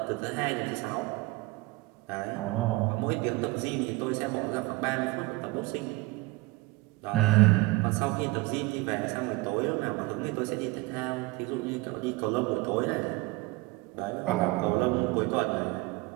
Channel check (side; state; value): left; quieter; 21.5 dB